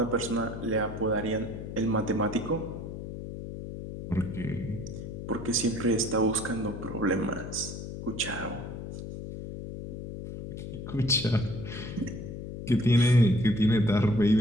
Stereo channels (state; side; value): noise; left; hum, 8 dB below the sound